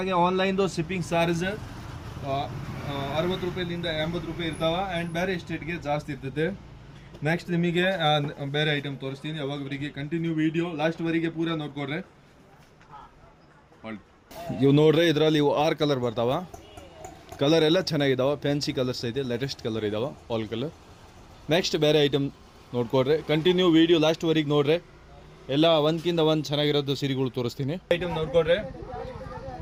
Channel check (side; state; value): both; identical; correlation 1.00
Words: ಆನ್ಲೈನ್ದು ಶಿಪ್ಪಿಂಗ್ ಚಾರ್ಜ್ 60 ರೂಪಾಯಿಲಿಂದ 80 ರೂಪಾಯಿ ಇರ್ತಾವ. ಆ್ಯಂಡ್ ಬೇರೆ ಸ್ಟೇಟ್ಗೆ ಜಾಸ್ತಿ ಇರ್ತದೆ. ನೆಕ್ಸ್ಟ್ ನಿಮಗೆ ಬೇರೆ ಐಟಮ್ ತೋರಿಸ್ತೀನಿ. ಅವಾಗವರಿಗೆ ಕಂಟಿನ್ಯೂ ವಿಡಿಯೋ ಲಾಸ್ಟ್ವರೆಗೆ ಪೂರಾ ನೋಡ್ಕೊಡ್ರೆ. ಇವು ನೋಡ್ರಿ, ಇದರಲ್ಲಿ ಇವು 6 ಕಲರ್ ಬರ್ತಾವ. ಕಲರ್ ಎಲ್ಲ ಚೆನ್ನಾಗಿದ್ದಾವೆ, ಫ್ಯಾನ್ಸಿ ಕಲರ್ಸ್ ಐತೆ, ಲೇಟೆಸ್ಟ್ ಕಲರ್ ಇದಾವೆ, ಆಲ್ ಕಲರ್. ನೆಕ್ಸ್ಟ್ ಬೇರೆ ಐಟಮ್ ನೋಡ್ಕೊಡ್ರಿ, ಕಂಟಿನ್ಯೂ ವಿಡಿಯೋ ಲಾಸ್ಟ್ವರೆಗೆ ನೋಡ್ರಿ. ಎಲ್ಲ ಒಂದ್ಕಿಂತ ಒಂದು ಚೆನ್ನಾಗಿರೋದು ಸೀರೆಗಳು ತೋರಿಸ್ತೀನಿ. ಐಟಮ್ ನೋಡ್ಕೊಡ್ರಿ,